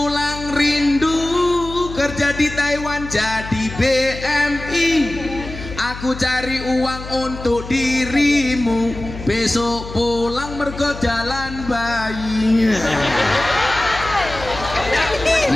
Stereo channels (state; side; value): noise; left; hum, 11 dB below the sound